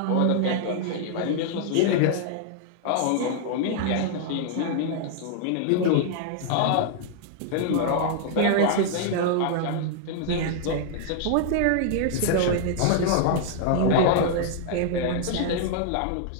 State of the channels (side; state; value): both; different; correlation -0.01